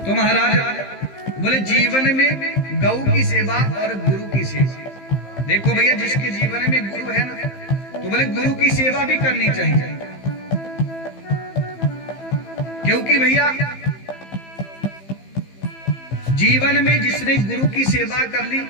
तो महाराज बोले जीवन में गौ की सेवा और गुरु की सेवा, देखो भैया जिसके जीवन में गुरु है ना, तो बोले गुरु की सेवा भी करनी चाहिए, क्योंकि भैया जीवन में जिसने गुरु की सेवा कर ली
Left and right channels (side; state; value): right; late; 15 ms